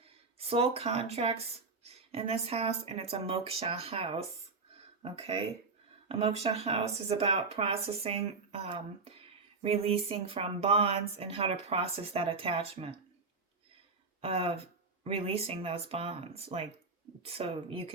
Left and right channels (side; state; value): left; quieter; 4.2 dB